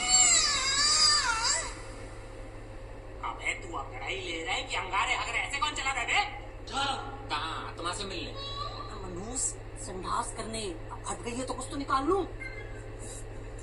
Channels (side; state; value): both; identical; correlation 1.00